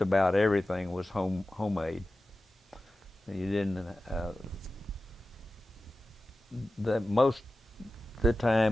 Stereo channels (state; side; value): normal; both; correlation 0.94